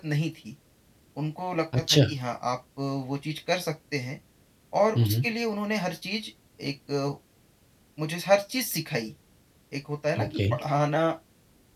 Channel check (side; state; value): both; identical; correlation 1.00